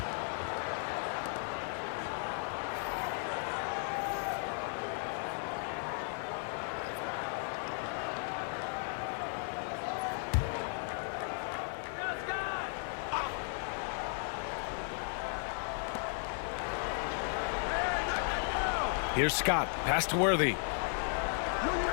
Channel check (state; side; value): silent; right; 54 dB below the other